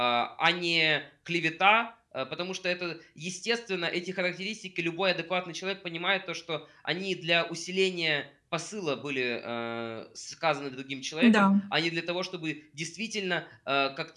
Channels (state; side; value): identical; both; correlation 1.00